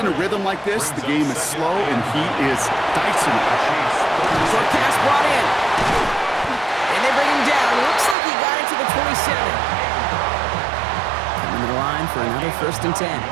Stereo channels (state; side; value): drops out; left; at 8.2 s